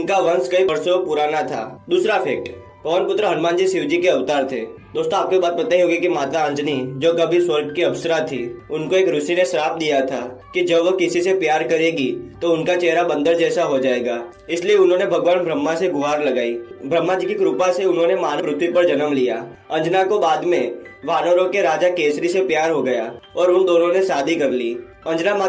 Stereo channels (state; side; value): identical; both; correlation 1.00